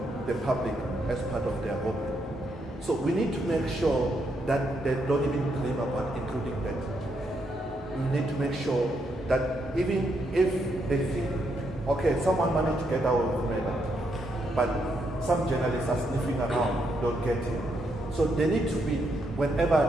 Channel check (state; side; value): normal; both; correlation 0.78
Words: the public as part of their hobby. So we need to make sure that they don't even dream about including that. We need to make sure that even if they think, okay, someone managed to get away with murder, but some journalists are sniffing around, don't get it. So they need to be,